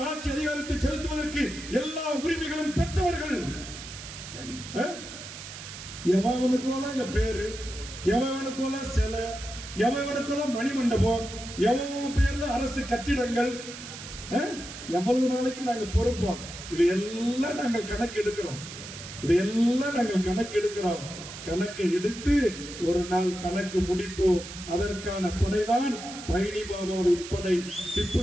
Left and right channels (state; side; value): noise; right; hiss, 12 dB below the sound